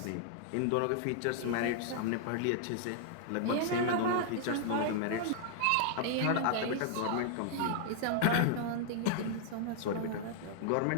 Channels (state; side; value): different; both; correlation -0.01